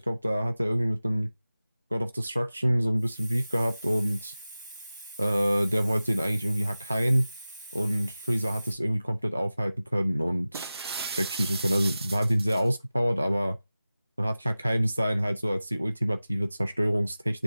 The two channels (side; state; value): both; inverted; correlation -0.96